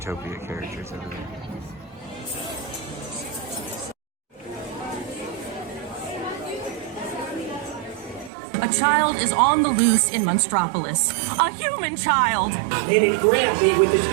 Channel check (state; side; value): drops out; left; at 8.3 s